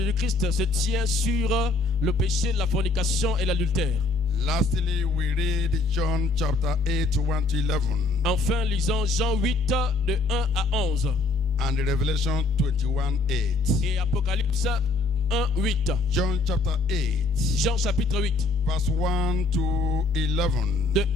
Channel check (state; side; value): quieter; right; 3.3 dB